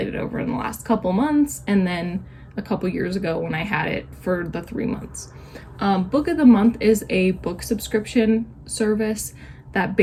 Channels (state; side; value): identical; both; correlation 1.00